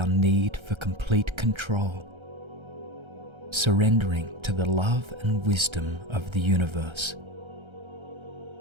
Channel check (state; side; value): late; left; 1.3 ms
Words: need for complete control, surrendering to the love and wisdom of the universe.